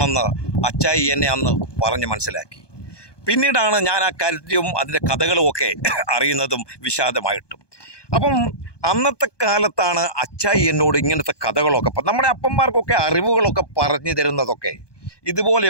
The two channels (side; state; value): right; late; 1.2 ms